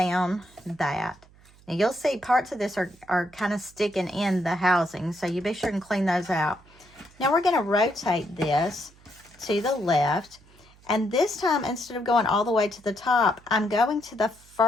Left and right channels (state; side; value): noise; right; hum, 27 dB below the sound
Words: that. Now you'll see parts of this are kind of sticking in the housing, so you be sure and clean those out. Now we're going to rotate this to the left. And this time, instead of going all the way to the top, I'm going to the